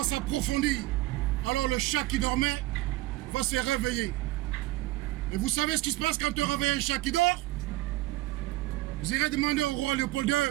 s'approfondir, alors le chat qui dormait va se réveiller. Et vous savez ce qui se passe quand on réveille un chat qui dort? Vous irez demander au roi Léopold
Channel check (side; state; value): left; quieter; 18.4 dB